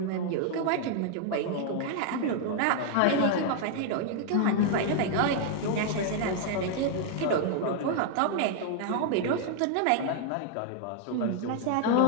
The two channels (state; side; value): different; both; correlation -0.01